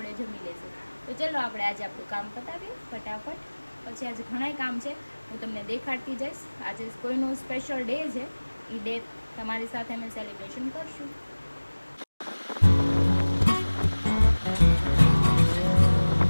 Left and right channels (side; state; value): both; inverted; correlation -1.00